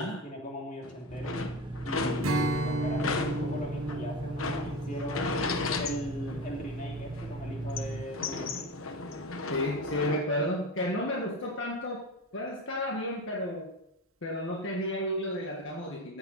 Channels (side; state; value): both; normal; correlation 0.25